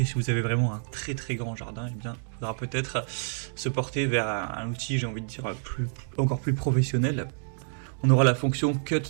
si vous avez vraiment un très très grand jardin, eh bien, il faudra peut-être se porter vers un outil, j'ai envie de dire, encore plus professionnel. On aura la fonction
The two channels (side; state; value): left; silent; digital silence